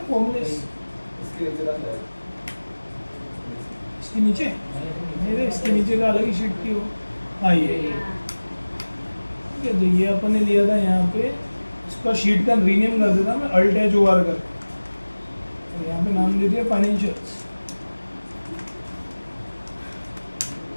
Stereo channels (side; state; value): both; inverted; correlation -1.00